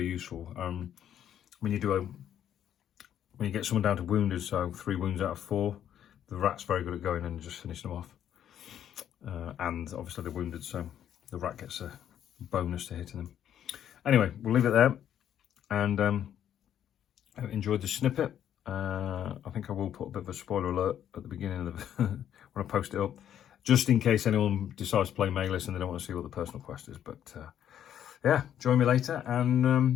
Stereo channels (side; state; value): right; quieter; 10.1 dB